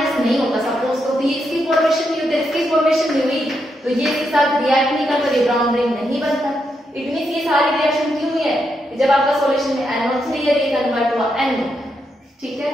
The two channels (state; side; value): normal; both; correlation 0.82